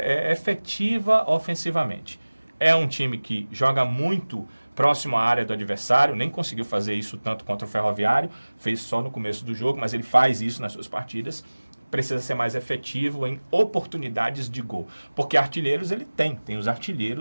efetiva ofensivamente. É um time que joga muito próximo à área do adversário, nem conseguiu fazer isso tanto contra o Ferroviário, fez só no começo do jogo, mas ele faz isso nas suas partidas. Precisa ser mais efetivo em oportunidades de gol. Porque artilheiros ele tem os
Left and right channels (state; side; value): inverted; both; correlation -1.00